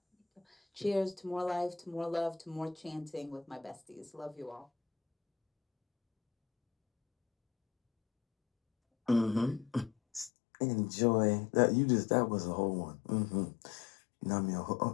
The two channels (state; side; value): drops out; right; at 10.3 s